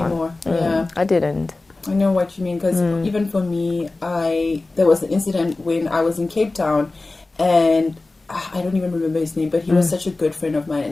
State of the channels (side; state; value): right; quieter; 3.2 dB